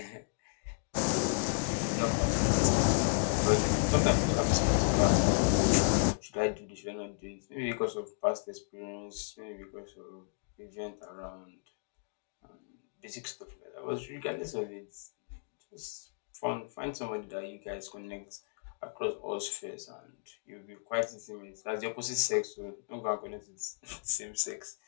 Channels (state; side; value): silent; right; digital silence